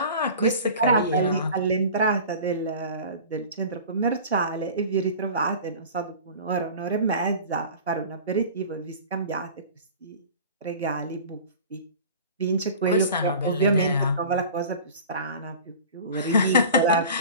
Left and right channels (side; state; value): both; inverted; correlation -0.39